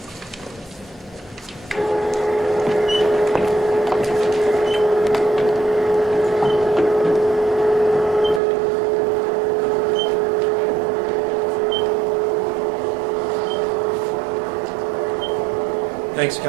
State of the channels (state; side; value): drops out; left; at 8.4 s